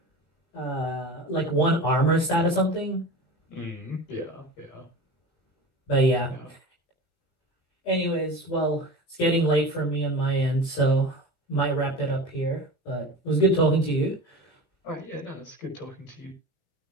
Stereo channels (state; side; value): late; right; 18 ms